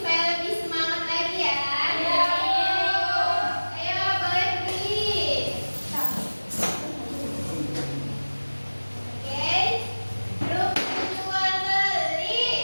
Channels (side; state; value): both; inverted; correlation -1.00